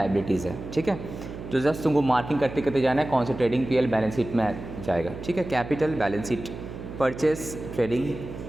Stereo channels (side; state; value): right; noise; hum, 11 dB below the sound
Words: है, ठीक है। तो जस्ट तुमको मार्किंग करते करते जाना है कौन से ट्रेडिंग पीएल बैलेंस शीट में जाएगा, ठीक है। Capital balance sheet, purchase trading,